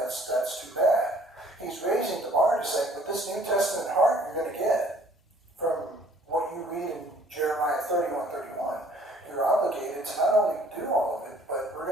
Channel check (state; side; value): normal; both; correlation 0.57